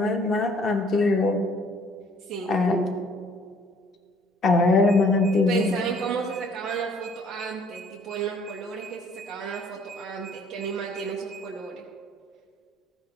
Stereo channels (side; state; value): both; normal; correlation 0.58